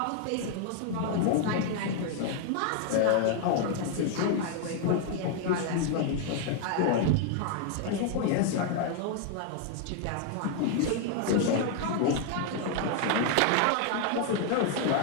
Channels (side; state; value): both; different; correlation 0.00